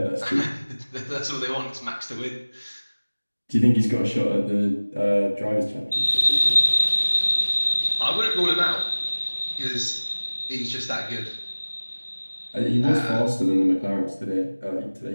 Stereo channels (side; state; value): both; inverted; correlation -1.00